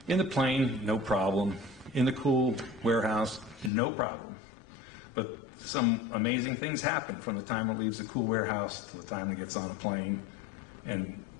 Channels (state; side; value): drops out; right; at 3.7 s